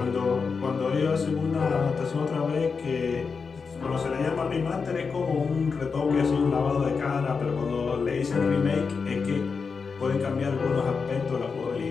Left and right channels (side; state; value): right; quieter; 5.2 dB